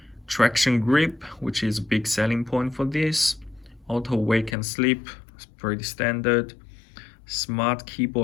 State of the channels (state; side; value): drops out; right; at 4.5 s